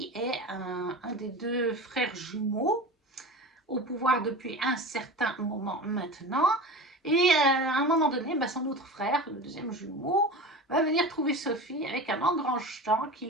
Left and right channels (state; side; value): normal; both; correlation 0.31